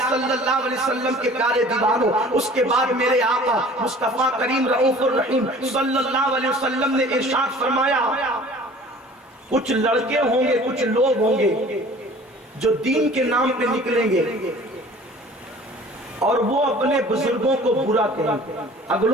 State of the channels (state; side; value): normal; both; correlation 0.47